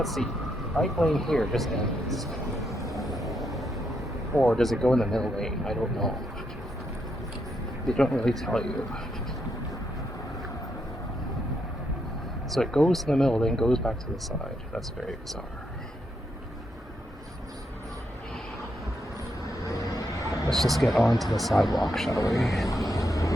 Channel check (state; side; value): normal; both; correlation 0.79